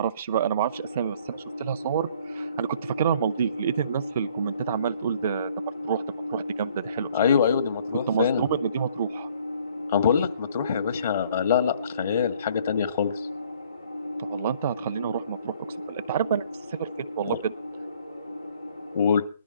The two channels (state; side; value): inverted; both; correlation -0.59